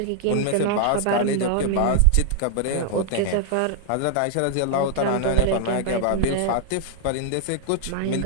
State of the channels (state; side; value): different; both; correlation 0.00